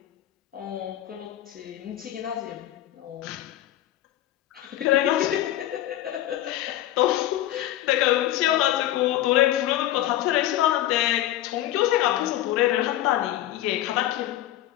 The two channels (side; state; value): right; quieter; 13.8 dB